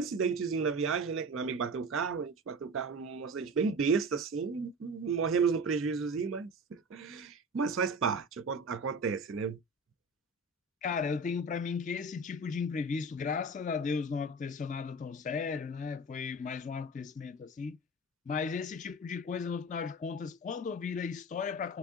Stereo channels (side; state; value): both; normal; correlation 0.33